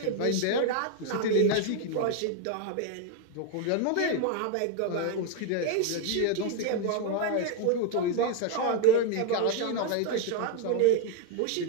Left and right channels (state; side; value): different; both; correlation 0.02